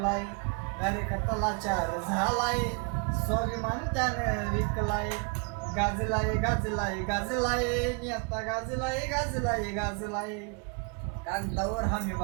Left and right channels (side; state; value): left; quieter; 34.9 dB